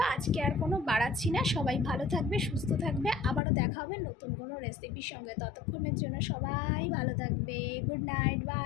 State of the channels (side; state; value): right; drops out; at 3.4 s